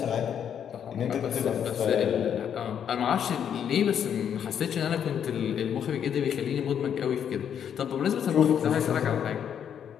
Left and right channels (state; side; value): quieter; right; 8.6 dB